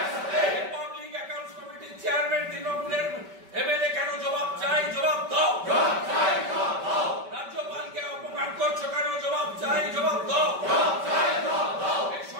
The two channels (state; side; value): late; left; 5.2 ms